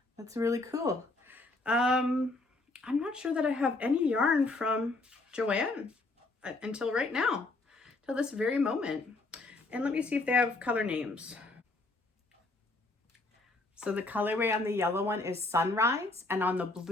That's really cool. I'm not sure that I have any yarn from Joanne until right now, till this very moment. And let me see if they have color names. So the colorway on the yellow one is Sunrise, and on the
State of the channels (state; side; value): quieter; right; 3.1 dB